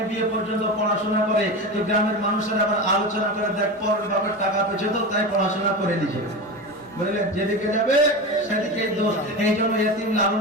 বিএ পর্যন্ত পড়াশোনা করে তো গ্রামের মানুষেরা আবার আলোচনা করে দেখ পরের বাপের টাকা পেয়েছে তো তাই পড়াশোনা করে নিয়েছে। বুঝলেন, যেদিকে যাবে সেদিকে দোষ। এই জন্য ইতিম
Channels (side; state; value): both; normal; correlation 0.24